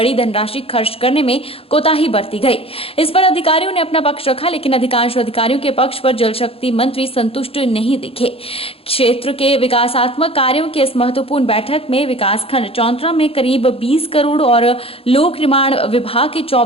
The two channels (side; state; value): right; late; 0.27 ms